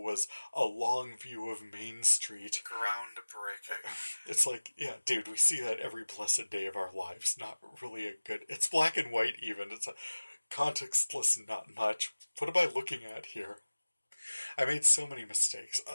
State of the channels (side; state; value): both; inverted; correlation -1.00